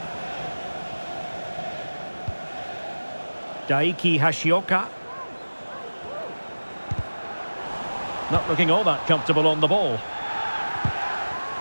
Daiki Hashioka. Not looking all that comfortable on the ball.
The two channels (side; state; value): both; inverted; correlation -1.00